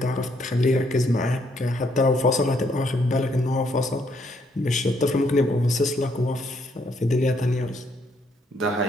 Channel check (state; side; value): normal; both; correlation 0.71